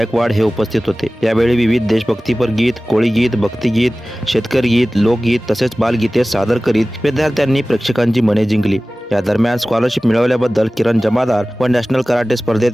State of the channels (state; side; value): normal; both; correlation 0.97